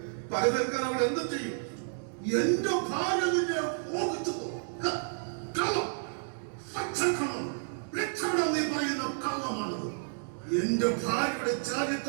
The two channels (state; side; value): silent; left; digital silence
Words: പക തീർക്കാൻ അവൾ എന്തും ചെയ്യും. എന്റെ ഭാര്യ നിന്നെ മോഹിച്ചു. കള്ളം, പച്ചക്കള്ളം, രക്ഷപ്പെടാൻ നീ പറയുന്ന കള്ളമാണത്. എന്റെ ഭാര്യയുടെ